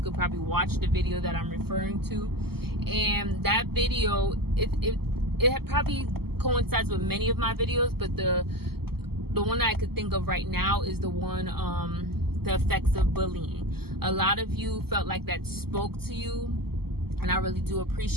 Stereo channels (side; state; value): left; late; 0.96 ms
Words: could probably watch the video that I'm referring to. And that video, it probably coincides with many of my videos, but the one that I could think of right now is the one, the effects of bullying. A lot of you felt like that spoke to you, and I really do